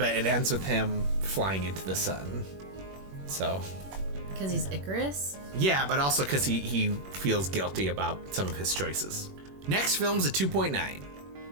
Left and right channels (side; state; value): left; late; 21 ms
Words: it ends with him flying into the sun. So. Because he's Icarus? Yeah, but also because he feels guilty about some of his choices. Next film's a 2.9.